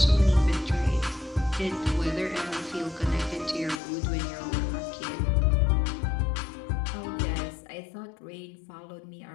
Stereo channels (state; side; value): drops out; right; at 3.8 s